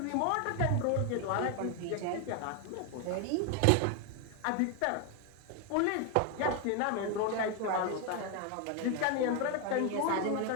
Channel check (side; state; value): both; different; correlation 0.01